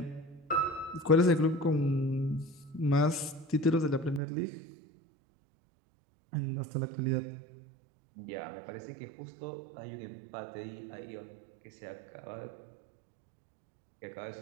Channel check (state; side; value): drops out; left; at 4.2 s